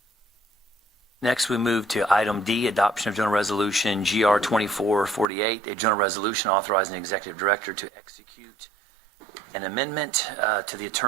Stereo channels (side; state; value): left; drops out; at 5.2 s